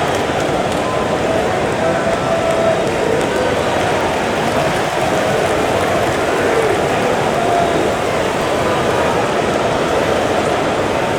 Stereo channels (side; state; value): both; identical; correlation 1.00